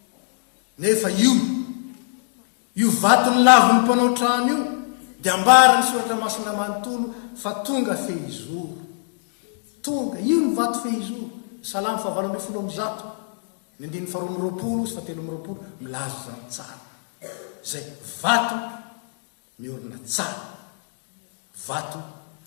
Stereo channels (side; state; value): right; silent; 63 dB below the other